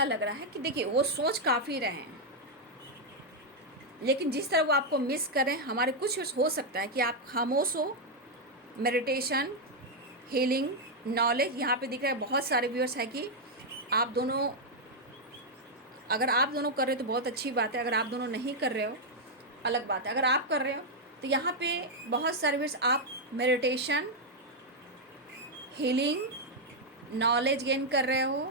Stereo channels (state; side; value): normal; both; correlation -0.01